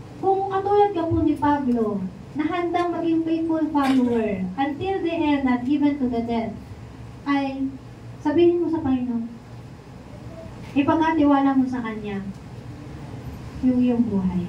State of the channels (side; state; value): both; identical; correlation 1.00